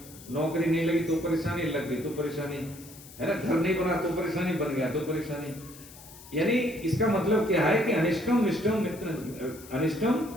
नौकरी नहीं लगी तो परेशानी, लग गई तो परेशानी, है ना, घर नहीं बना तो परेशानी, बन गया तो परेशानी। यानी इसका मतलब क्या है कि अनिष्टम विष्टम मित्र, अनिष्टम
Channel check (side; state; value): left; noise; hiss, 19 dB below the sound